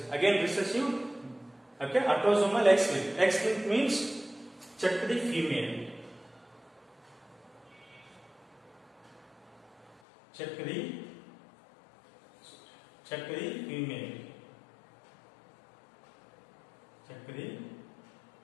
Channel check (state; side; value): drops out; right; at 10.0 s